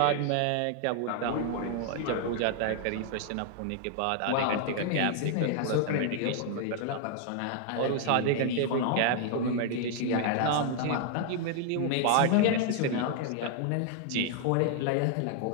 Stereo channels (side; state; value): both; different; correlation 0.00